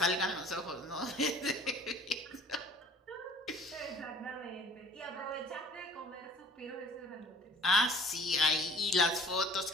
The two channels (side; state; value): both; normal; correlation 0.50